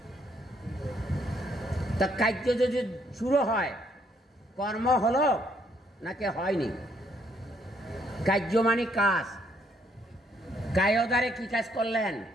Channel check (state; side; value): normal; both; correlation 0.70